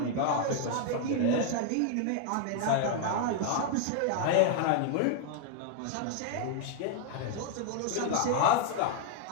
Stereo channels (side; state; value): both; different; correlation 0.00